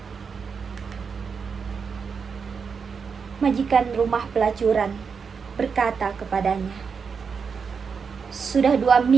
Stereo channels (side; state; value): left; quieter; 5.8 dB